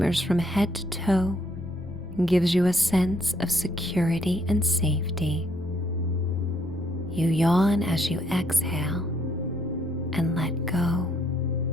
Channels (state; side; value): normal; both; correlation 0.70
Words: from head to toe and gives you a sense of security and safety. You yawn as you exhale and let go.